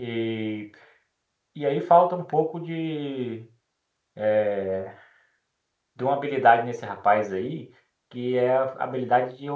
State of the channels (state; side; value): identical; both; correlation 1.00